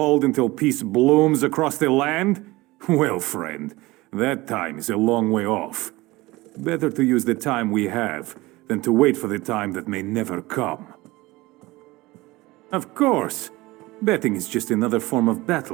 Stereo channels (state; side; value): quieter; left; 20.5 dB